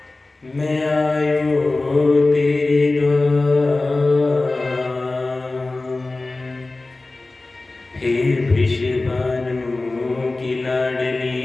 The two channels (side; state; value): right; quieter; 3.2 dB